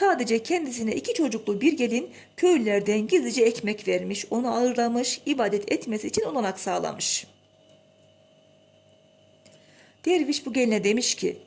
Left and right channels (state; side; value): identical; both; correlation 1.00